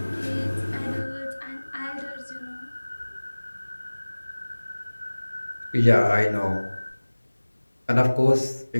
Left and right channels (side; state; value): both; inverted; correlation -1.00